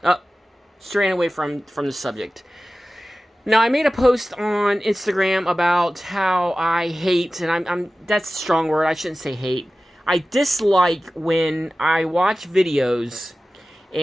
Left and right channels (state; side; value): normal; both; correlation 0.96